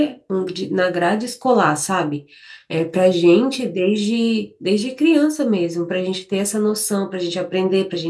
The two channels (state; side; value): identical; both; correlation 1.00